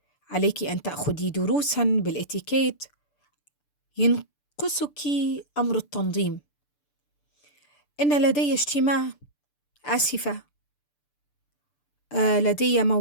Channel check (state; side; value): late; right; 6.8 ms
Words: عليك أن تأخذي دروسا بالإتيكيت. ينقصك أمر التنظيم. إن لدي اجتماع. آسفة. لدي